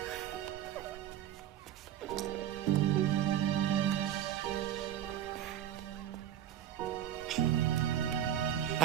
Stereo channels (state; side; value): quieter; left; 11.0 dB